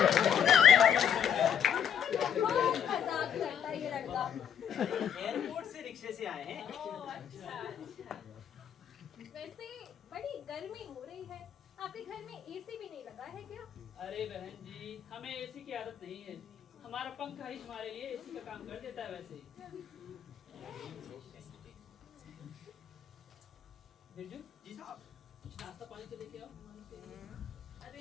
बहुत मजाक करता है ये लड़का। एयरपोर्ट से रिक्शे से आए हैं। वैसे बड़ी गर्मी हो रही है, आपके घर में एसी भी नहीं लगा है क्या? अरे बहन जी, हमें एसी की आदत नहीं है। हमारा पंखा ही हमारे लिए एसी का काम कर देता है। वैसे बिरजू जी साहब। कुछ नाश्ता पानी तो लेके आओ।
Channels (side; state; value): right; quieter; 8.8 dB